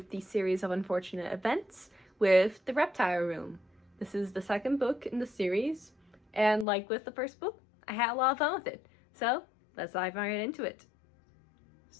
the series of unfortunate events with the Reptile Room. This is the second book in the series, and like with the first book, I had a lot of fun with it. So let's dive right into it.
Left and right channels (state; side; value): drops out; right; at 6.7 s